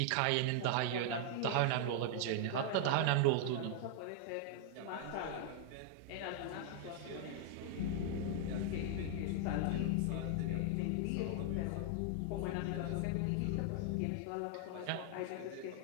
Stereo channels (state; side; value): different; both; correlation 0.00